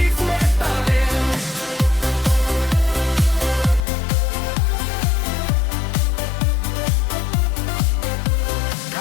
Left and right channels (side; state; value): right; drops out; at 3.8 s